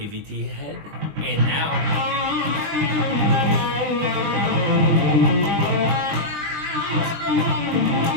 head, and now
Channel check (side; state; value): left; late; 20 ms